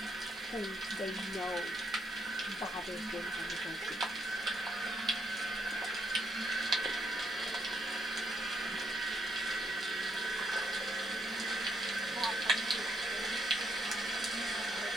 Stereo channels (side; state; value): both; normal; correlation 0.74